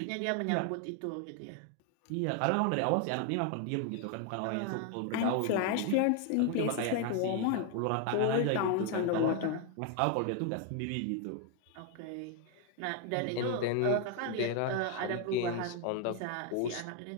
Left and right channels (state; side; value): different; both; correlation 0.01